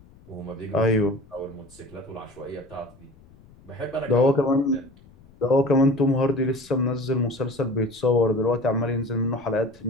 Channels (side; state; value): left; noise; rumble, 26 dB below the sound